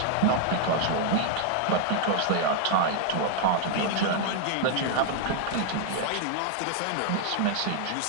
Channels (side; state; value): both; different; correlation 0.00